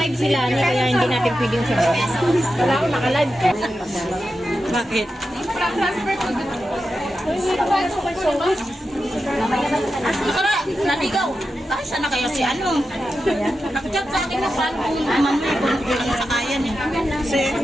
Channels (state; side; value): normal; both; correlation 0.90